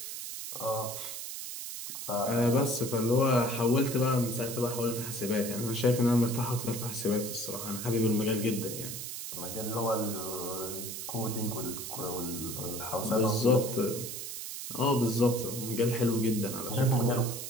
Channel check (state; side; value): noise; right; hiss, 7 dB below the sound